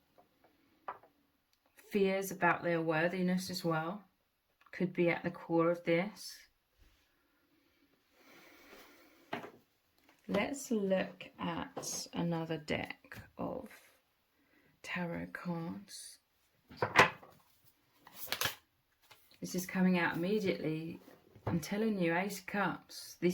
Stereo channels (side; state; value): both; identical; correlation 1.00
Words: Fears about their worthiness as well could be at the core of this. Let's look at another deck of tarot cards. This is coming out immediately. I'm telling you, Ace of Cups.